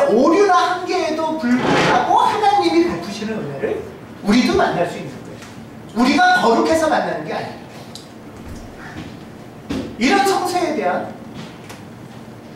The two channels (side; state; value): both; identical; correlation 1.00